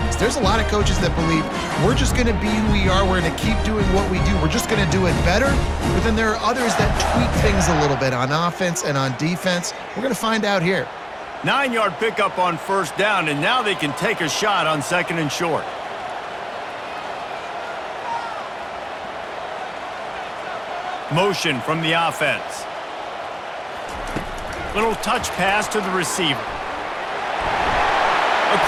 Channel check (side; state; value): both; identical; correlation 1.00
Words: There's a lot of coaches that believe we're just going to be who we are. We're going to keep doing what we do. We're just going to do it better. But then there are others that tweak things a little bit on offense and on defense. We're going to find out here. 9-yard pickup on first down, and now they can take a shot on second and short. Motion from the offense. Little touch pass to the receiver.